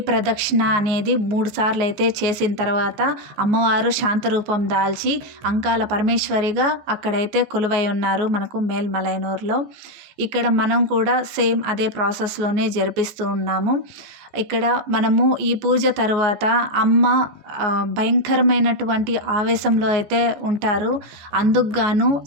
ప్రదక్షిణ అనేది 3 సార్లు అయితే చేసిన తర్వాత అమ్మవారు శాంతరూపం దాల్చి అంకాల పరమేశ్వరిగా అక్కడైతే కొలువై ఉన్నారు మనకు మేల్మలైనూరులో. ఇక్కడ మనం కూడా సేమ్ అదే ప్రాసెస్లోనే జరిపిస్తూ ఉన్నాము. ఇక్కడ మనము ఈ పూజ తర్వాత అమ్మ భయంకరమైనటువంటి ఆవేశంలో అయితే ఉంటారు. అందుకు గాను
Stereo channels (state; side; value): late; left; 14 ms